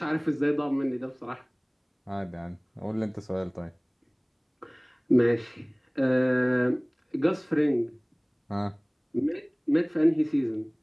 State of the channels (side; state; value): both; identical; correlation 1.00